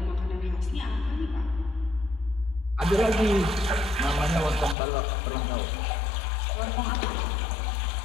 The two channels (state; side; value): drops out; right; at 4.8 s